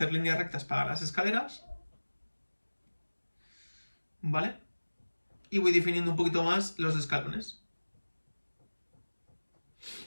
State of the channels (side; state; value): both; inverted; correlation -1.00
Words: líneas rectas para las escaleras, ¿vale? Y voy definiendo un poquito más los escalones.